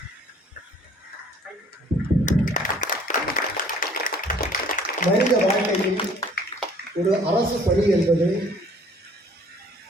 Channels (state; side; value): normal; both; correlation 0.56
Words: மனித வாழ்க்கையில் ஒரு அரசு பணி என்பது